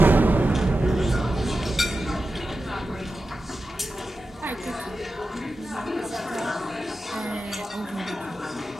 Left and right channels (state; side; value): normal; both; correlation 0.92